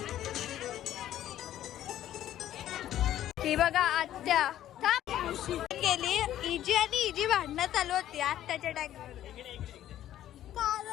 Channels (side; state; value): right; quieter; 12.3 dB